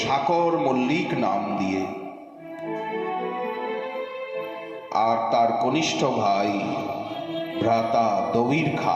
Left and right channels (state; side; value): identical; both; correlation 1.00